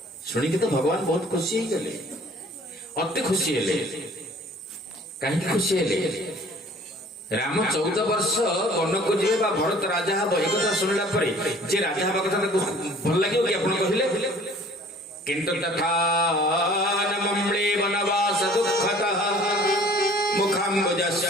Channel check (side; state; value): both; normal; correlation 0.51